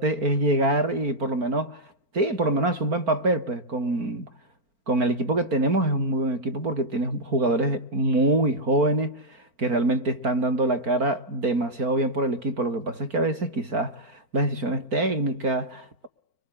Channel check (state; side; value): late; left; 4.4 ms